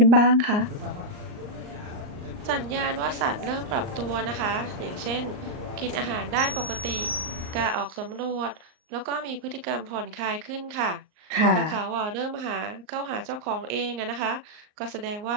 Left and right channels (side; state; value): left; late; 38 ms